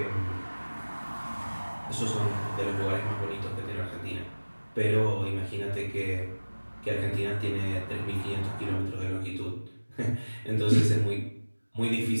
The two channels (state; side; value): inverted; both; correlation -1.00